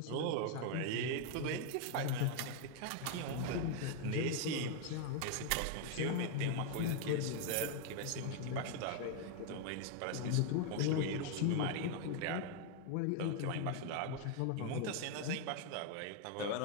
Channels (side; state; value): both; different; correlation 0.01